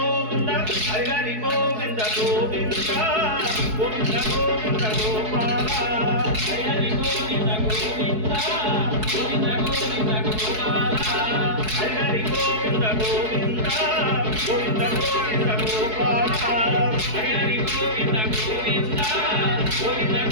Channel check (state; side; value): late; left; 4.7 ms